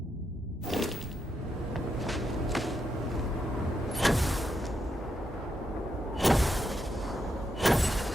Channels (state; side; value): normal; both; correlation 0.82